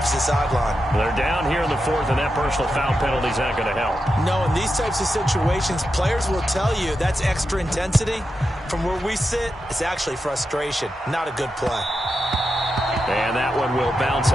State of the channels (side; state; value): both; normal; correlation 0.88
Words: sideline. They're down here in the 4th, and that personal foul penalty is not going to help. No, in these types of situations, players will tell you that's extra intensity. From where we sit, it's actually frustration. Not a good play. And that one will bounce